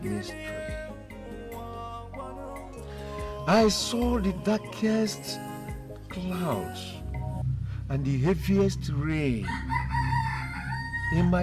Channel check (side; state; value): both; identical; correlation 1.00